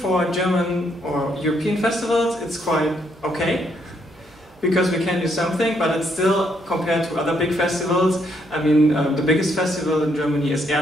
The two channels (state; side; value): normal; both; correlation 0.73